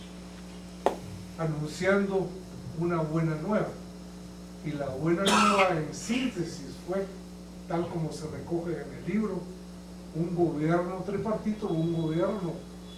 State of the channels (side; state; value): both; identical; correlation 1.00